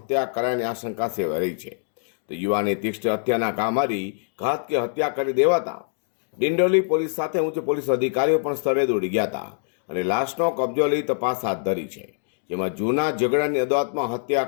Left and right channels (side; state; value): right; silent; digital silence